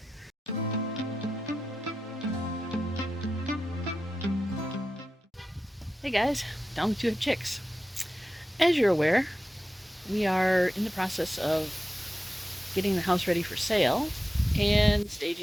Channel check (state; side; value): normal; both; correlation 0.92